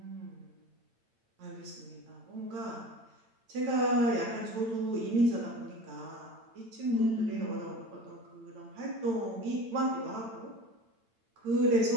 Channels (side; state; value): left; late; 8.9 ms